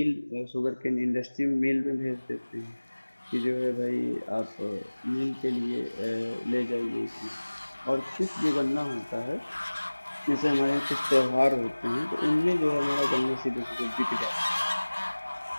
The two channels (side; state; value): both; inverted; correlation -1.00